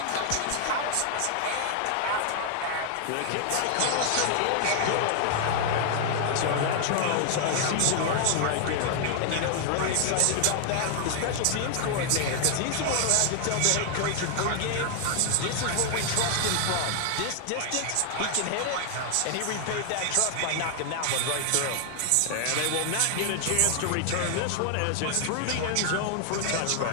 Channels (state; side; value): different; both; correlation 0.00